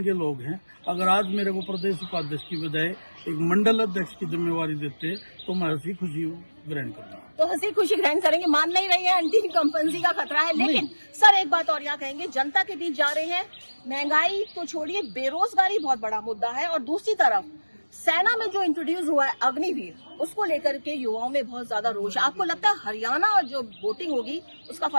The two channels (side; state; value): both; inverted; correlation -1.00